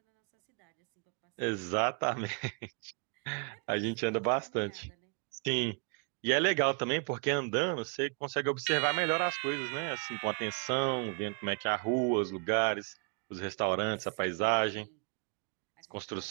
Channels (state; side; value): quieter; left; 36.3 dB